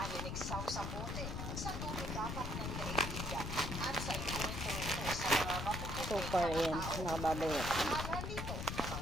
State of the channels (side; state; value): left; noise; rumble, 4 dB below the sound